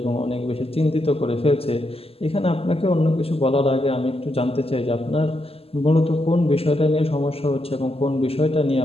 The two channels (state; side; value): late; right; 0.28 ms